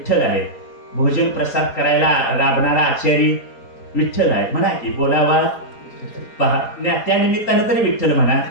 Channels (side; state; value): right; late; 4.3 ms